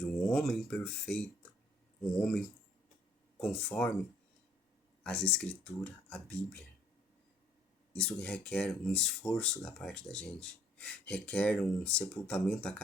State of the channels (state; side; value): normal; both; correlation 0.62